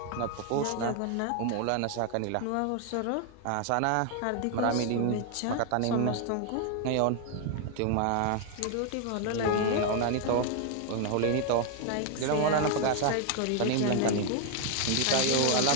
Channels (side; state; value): both; different; correlation 0.00